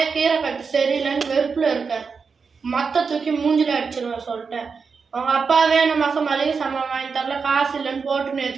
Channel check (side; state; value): left; quieter; 5.3 dB